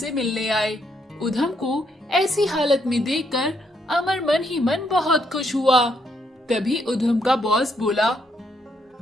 मिलने आए। उधम को ऐसी हालत में देखकर अमर मन ही मन बहुत खुश हुआ। तभी उधम का बॉस बोला,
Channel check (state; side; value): normal; both; correlation 0.74